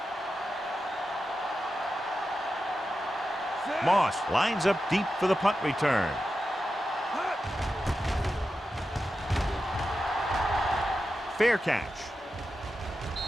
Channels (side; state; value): both; normal; correlation 0.90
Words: Moss lines up deep for the punt return. Fair catch.